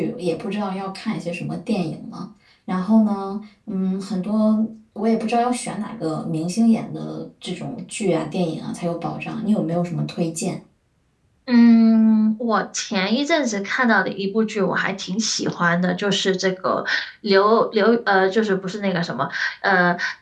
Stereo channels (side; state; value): both; identical; correlation 1.00